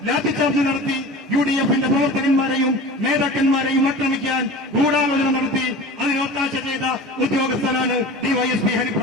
ലാത്തിച്ചാർജ് നടത്തി UDFന്റെ പ്രവർത്തകന്മാരെയും നേതാക്കന്മാരെയും ആക്രമിക്കാൻ ഗൂഢാലോചന നടത്തി അതിന് ഒത്താശ ചെയ്ത ഉദ്യോഗസ്ഥനാണ് DYSP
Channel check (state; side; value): normal; both; correlation 0.36